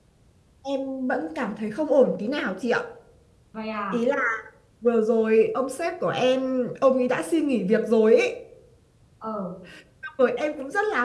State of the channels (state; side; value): identical; both; correlation 1.00